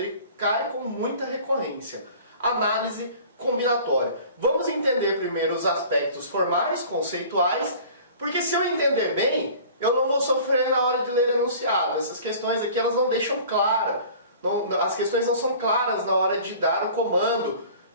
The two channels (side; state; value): both; inverted; correlation -0.45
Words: cai com muita recorrência. Análise combinatória. Vamos entender primeiro os aspectos formais, conceituais, porque se eu entender bem, eu não vou sofrer na hora de ler enunciado. Essas questões aqui elas não deixam claro. As questões não são claras na hora de dar o comando